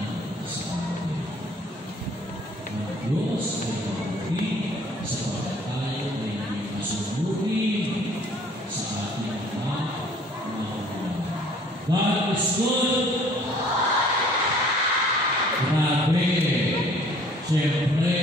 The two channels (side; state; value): both; normal; correlation 0.55